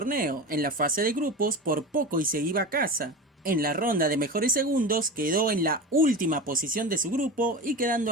En la fase de grupos por poco y se iba a casa. En la ronda de mejores segundos quedó en la última posición de su grupo y quedando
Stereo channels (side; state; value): both; normal; correlation 0.27